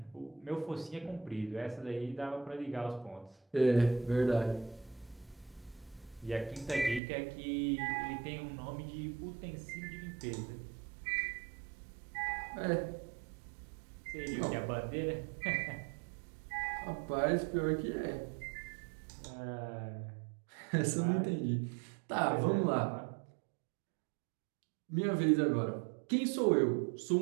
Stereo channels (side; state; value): left; drops out; at 7.0 s